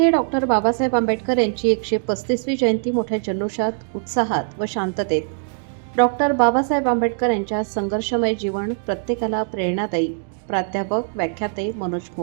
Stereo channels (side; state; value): left; silent; 64 dB below the other